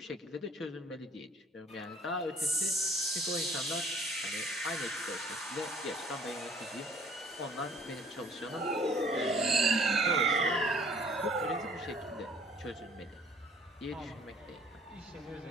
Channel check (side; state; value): both; normal; correlation 0.56